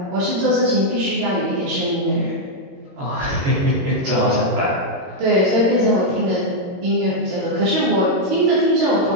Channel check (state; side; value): late; left; 22 ms